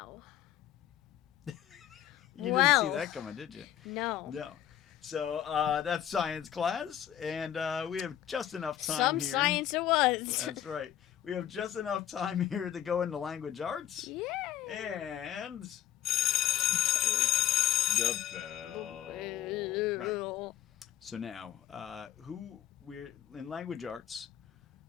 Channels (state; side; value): quieter; right; 11.2 dB